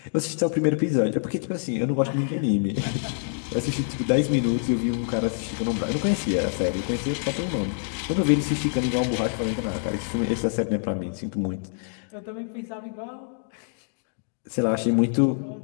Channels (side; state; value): right; silent; digital silence